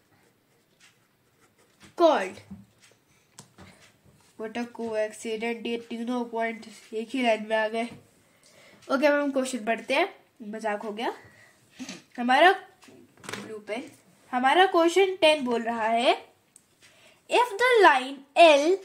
called? What a coincidence, ये तीनों point एक ही line में आ गए। Okay, अब हम question पढ़ते हैं। मजाक हो गया। हमारा ब्लू पेन। हमारा क्वेश्चन 10 बोल रहा है if the line L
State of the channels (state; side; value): identical; both; correlation 1.00